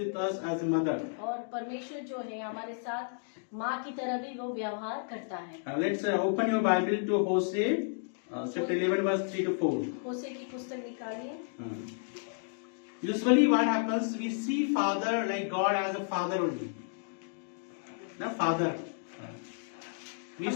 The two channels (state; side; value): silent; right; digital silence